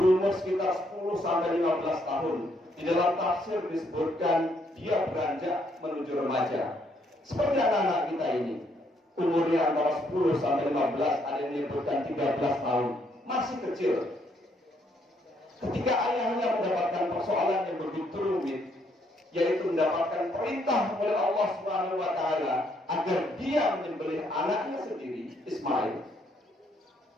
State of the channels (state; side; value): normal; both; correlation 0.71